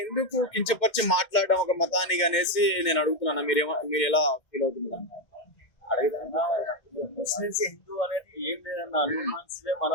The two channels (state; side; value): late; right; 2.2 ms